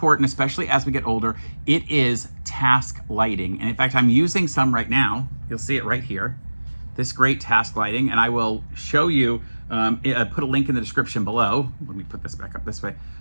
especially as we get older. It is task lighting. And in fact, I'm using some right now. You'll see it right here. This great task lighting. And I will show you, put a link in the description below. Let me put this back up this way.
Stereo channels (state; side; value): inverted; both; correlation -1.00